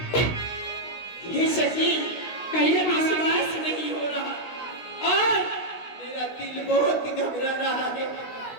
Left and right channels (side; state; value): right; late; 16 ms